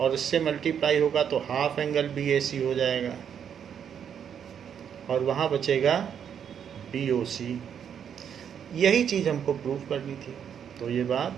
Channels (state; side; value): quieter; left; 8.3 dB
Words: और इससे मल्टीप्लाई होगा तो हाफ एंगल BAC हो जाएगा, और वहाँ बचेगा BOC। यही चीज़ हमको प्रूव करनी थी, तो ये बात